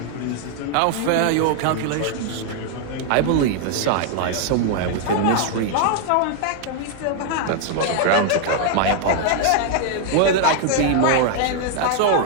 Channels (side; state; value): both; different; correlation 0.00